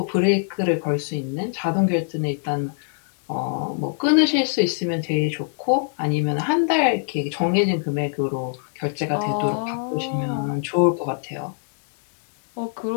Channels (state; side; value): silent; right; digital silence